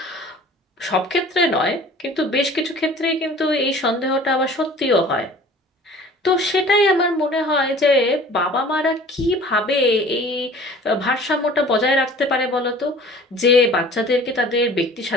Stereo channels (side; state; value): both; normal; correlation 0.47